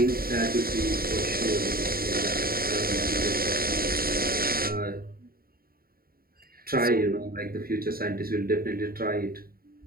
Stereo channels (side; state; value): left; late; 0.43 ms